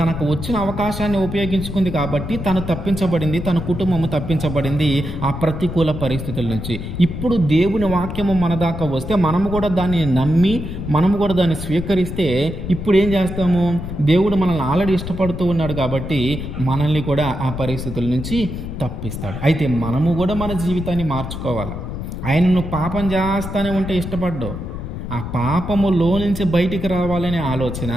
వచ్చిన అవకాశాన్ని ఉపయోగించుకుంది కాబట్టి తను తప్పించబడింది, తన కుటుంబము తప్పించబడింది ఆ ప్రతికూల పరిస్థితుల నుంచి. ఇప్పుడు దేవుని వాక్యము మన దాకా వస్తే మనము కూడా దాన్ని నమ్మి మనము కూడా దాన్ని స్వీకరిస్తే ఇప్పుడు ఏం చేస్తాము? దేవుడు మనల్ని ఆల్రెడీ ఇష్టపడుతూ ఉన్నాడు కాబట్టి మనల్ని కూడా ఆ పరిస్థితుల నుంచి తప్పిస్తాడు. అయితే మనము కూడా మన జీవితాన్ని మార్చుకోవాలి. ఆయనను పాపం చేస్తానే ఉంటే ఇష్టపడ్డావు, ఆ పాపములో నుంచి బయటికి రావాలనే ఆలోచన,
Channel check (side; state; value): left; noise; rumble, 7 dB below the sound